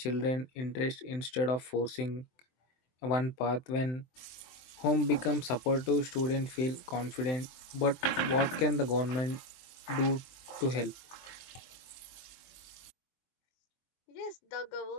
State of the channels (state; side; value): late; right; 23 ms